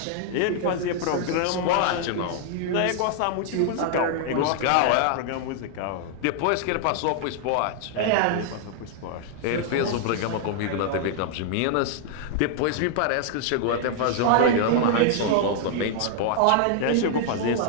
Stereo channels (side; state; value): both; different; correlation 0.00